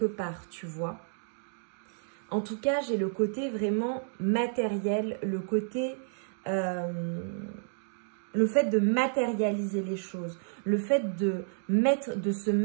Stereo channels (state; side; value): silent; left; digital silence